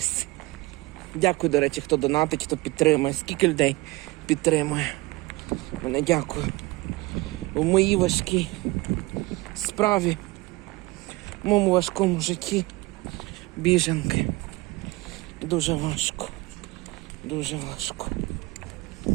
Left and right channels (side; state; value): left; quieter; 21.5 dB